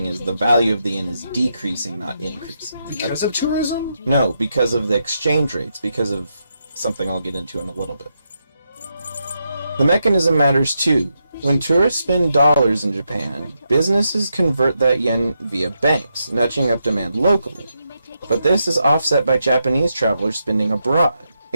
is the value of the yen is decreasing, not increasing. Because of tourism? No, because of the exchange rates, because of something I'll get into in a little bit. The mechanism matters too. When tourists spend dollars in Japan, businesses convert that yen via banks, nudging up demand locally. But this is offset by Japanese travelers spending abroad,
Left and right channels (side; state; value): both; inverted; correlation -0.83